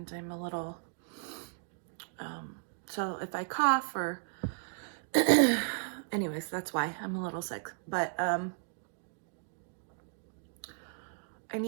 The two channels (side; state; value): left; silent; digital silence